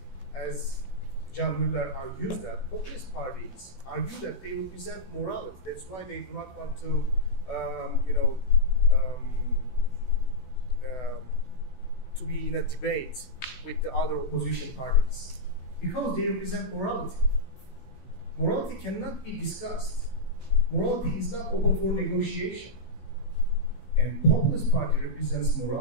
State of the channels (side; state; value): right; late; 16 ms